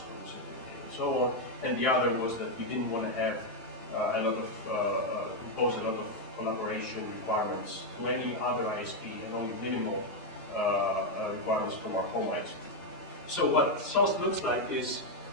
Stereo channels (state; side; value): normal; both; correlation 0.02